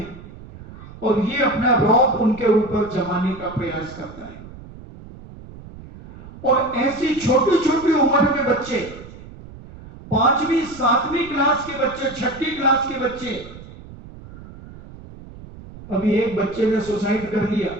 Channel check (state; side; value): noise; right; rumble, 17 dB below the sound